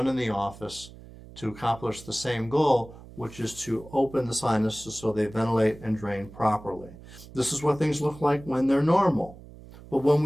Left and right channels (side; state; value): right; noise; hum, 18 dB below the sound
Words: in the office to accomplish the same goal, which is to open the sinuses so they ventilate and drain properly. This is what things look like when they're normal. But when